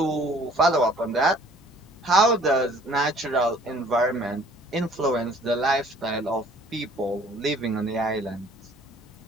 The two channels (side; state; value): both; normal; correlation 0.55